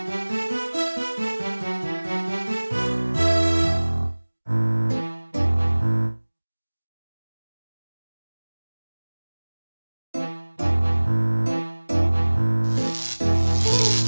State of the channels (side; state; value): both; inverted; correlation -1.00